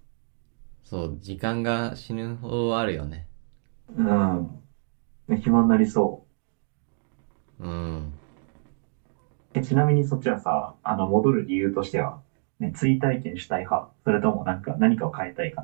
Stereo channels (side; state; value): left; silent; digital silence